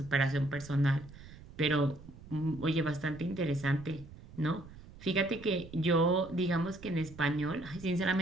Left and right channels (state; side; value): noise; right; rumble, 18 dB below the sound